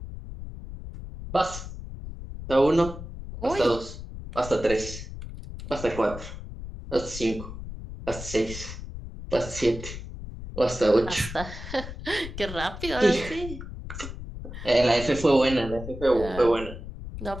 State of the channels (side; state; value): left; noise; rumble, 10 dB below the sound